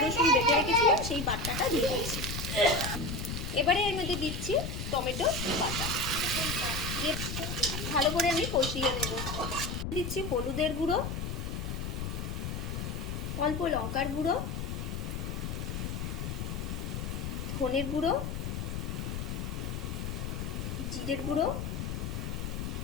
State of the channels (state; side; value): noise; left; rumble, 4 dB below the sound